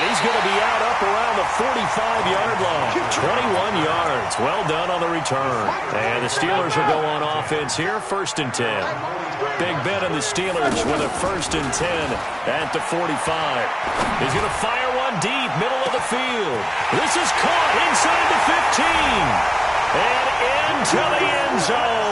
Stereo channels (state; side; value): identical; both; correlation 1.00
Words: he's going to be out up around the 45-yard line. 21 yards. Well done on the return. And the Steelers will go on offense here, 1st and 10. Big Ben and the Steelers with a 1st and 10 at the 45. He's going to fire one deep, middle of the field. This is caught inside the 15. And into the end